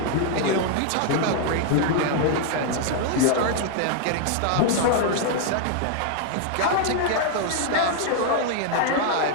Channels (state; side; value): different; both; correlation 0.00